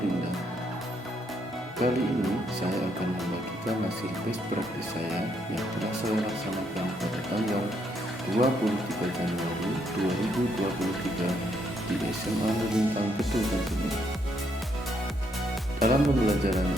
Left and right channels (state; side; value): normal; both; correlation 0.74